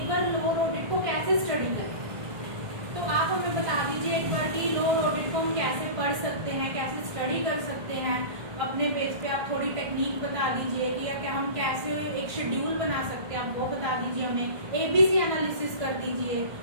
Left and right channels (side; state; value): left; late; 1.5 ms